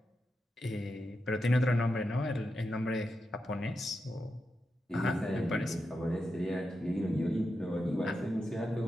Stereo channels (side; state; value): both; normal; correlation 0.88